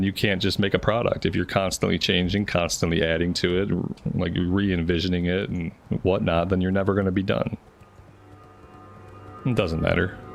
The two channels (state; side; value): identical; both; correlation 1.00